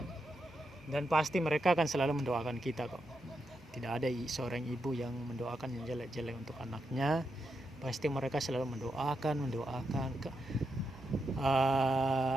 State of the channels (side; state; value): both; normal; correlation 0.84